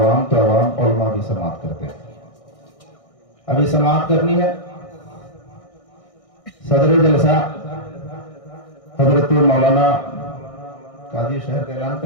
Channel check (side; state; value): right; late; 1.6 ms